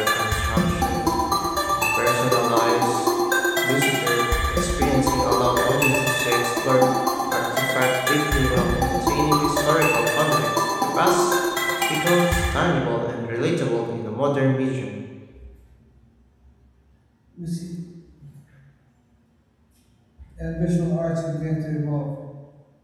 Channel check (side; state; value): both; identical; correlation 1.00